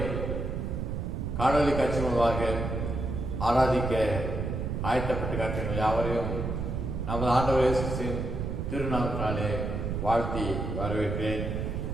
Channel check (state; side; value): noise; right; rumble, 3 dB below the sound